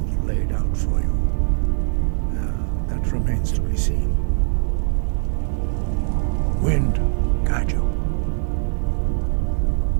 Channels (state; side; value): silent; left; 55 dB below the other